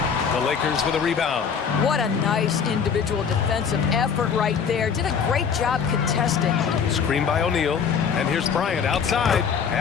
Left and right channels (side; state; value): right; quieter; 6.6 dB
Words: The Lakers with a rebound. What a nice individual defensive effort right there. Did a great job contesting. Screen by O'Neal. And here's Bryant outside.